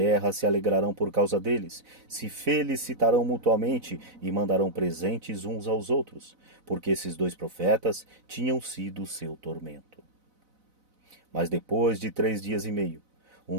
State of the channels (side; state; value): left; late; 4.0 ms